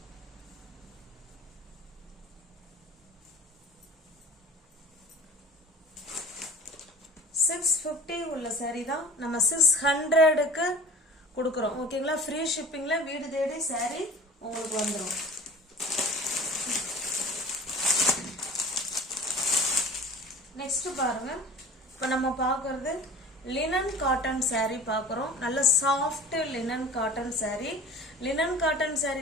$650 உள்ள saree தான் நம்ம 600க்கு கொடுக்குறோம். ஓகேங்களா? ஃப்ரீ ஷிப்பிங்ல வீடு தேடி saree உங்களுக்கு வந்துடும். நெக்ஸ்ட் பாருங்க, இப்போ நம்ம பார்க்கறது லினன் காட்டன் saree பார்க்குறோம். நல்ல soft linen cotton saree. Linen cotton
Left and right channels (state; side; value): normal; both; correlation 0.42